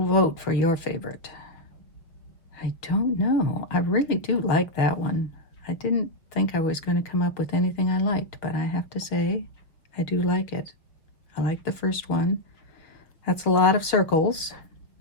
vote for your favorite. I don't know. I really do like that one. I didn't think I was going to come up with anything I liked, but I have to say, I do like it. I like the first one. That's a lot of circles,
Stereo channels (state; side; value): late; right; 5.9 ms